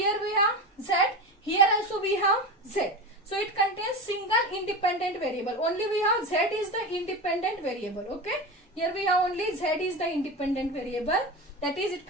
we have z, here also we have z. So it contains single independent variable. Only we have z is the independent variable. Okay. Here we have only z is the independent variable. That is, it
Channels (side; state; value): both; normal; correlation 0.24